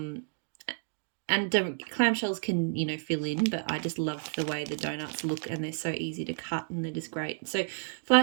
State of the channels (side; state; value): left; silent; digital silence